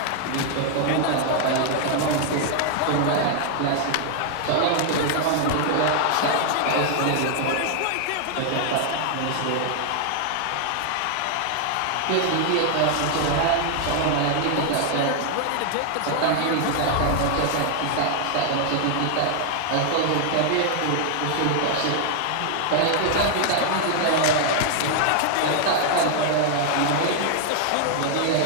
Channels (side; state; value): both; different; correlation 0.00